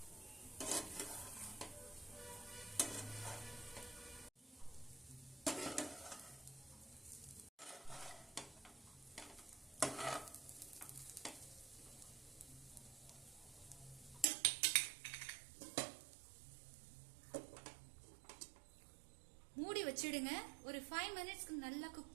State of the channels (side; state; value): left; drops out; at 14.2 s